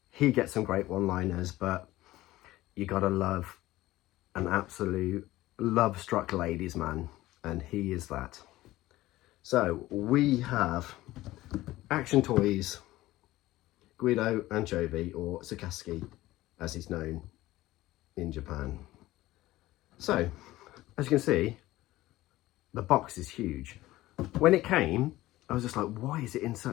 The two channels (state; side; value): quieter; right; 16.9 dB